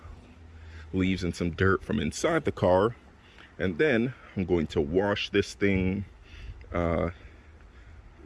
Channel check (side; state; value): both; identical; correlation 1.00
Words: leaves and some dirt from inside the car. And then I'm going to wash this thing,